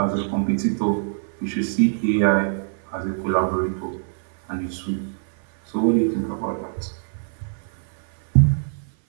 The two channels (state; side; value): silent; left; 55 dB below the other